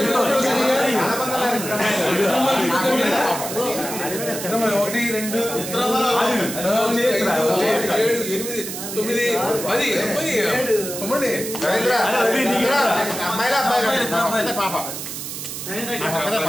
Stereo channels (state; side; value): noise; right; hiss, 7 dB below the sound